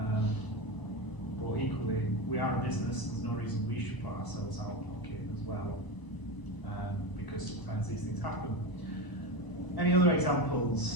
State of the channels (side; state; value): right; late; 1.0 ms